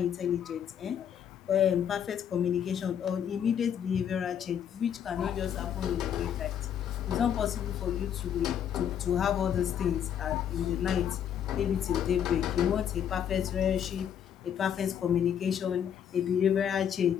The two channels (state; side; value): quieter; right; 8.9 dB